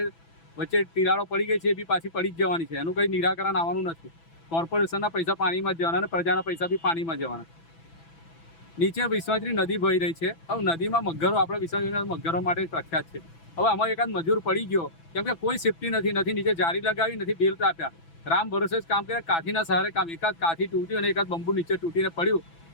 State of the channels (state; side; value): late; right; 6.0 ms